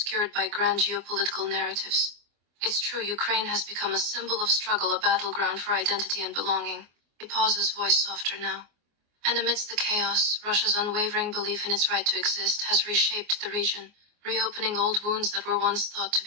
by grand geopolitical narratives. It's true, Ukraine has become a symbol of struggle, a battleground for identity and belonging. He pauses, voice softer now. And amidst the chaos, Russia's unwavering belief in its right to exist has reshaped the region, reopening old wounds that were once thought to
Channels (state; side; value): late; left; 24 ms